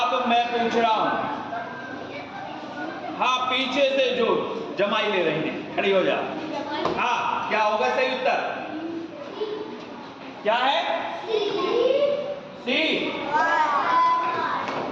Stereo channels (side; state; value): both; identical; correlation 1.00